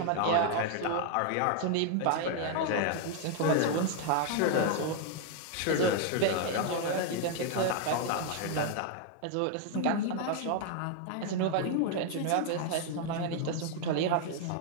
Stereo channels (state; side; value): different; both; correlation 0.00